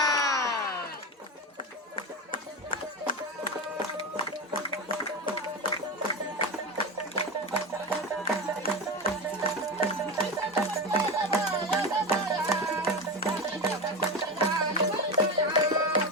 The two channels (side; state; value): both; normal; correlation 0.20